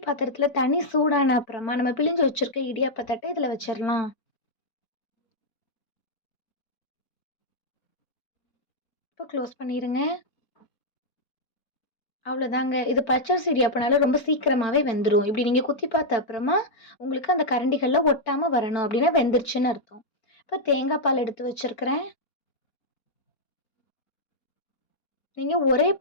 பாத்திரத்தில் தண்ணி சூடான அப்புறமா நம்ம பிழிஞ்சு வச்சுருக்க இடியாப்ப தட்டை இதில் வச்சிடலாம். இப்போ க்ளோஸ் பண்ணிடுங்க. அவ்வளோதாங்க. இது பச்சரிசி இடியாப்பனால ரொம்ப சீக்கிரமாகவே வெந்துடும். இப்படி நீங்கள் குத்தி பார்த்த அப்புறமா உங்களுக்கு அந்த கரண்டிகளில் ஒட்டாமல் வரணும். அப்படின்னா வெந்துருச்சுன்னு அர்த்தம். இப்போ தேங்காய் பால் எடுத்து வச்சுருக்கிறேன். நீங்கள் ஒரே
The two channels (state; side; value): late; right; 4.2 ms